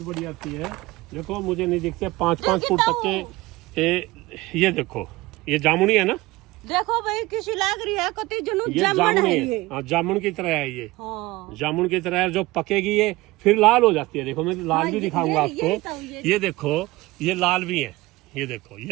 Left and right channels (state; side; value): quieter; left; 20.1 dB